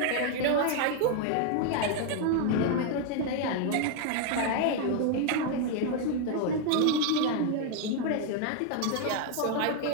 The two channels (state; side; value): different; both; correlation 0.00